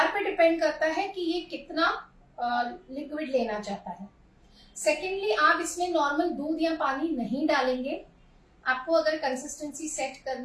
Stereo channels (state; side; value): identical; both; correlation 1.00